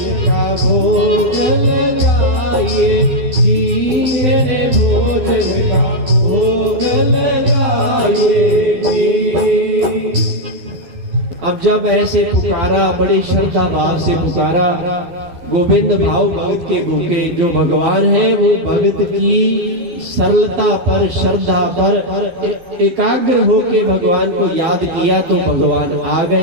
का भोग लगाइए जी, मेरे भोजन का भोग लगाइए जी। अब जब ऐसे पुकारा, बड़े श्रद्धा भाव से पुकारा, गोविंद भाव भगत के भूखे जो भगवान है वो भगत की सरलता पर, श्रद्धा पर एकाग्र होके भगवान को याद किया तो भगवान आ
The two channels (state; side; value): late; left; 12 ms